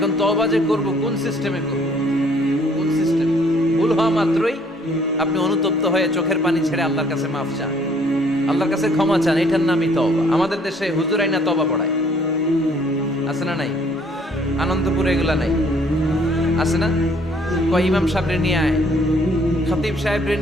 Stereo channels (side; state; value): both; normal; correlation 0.61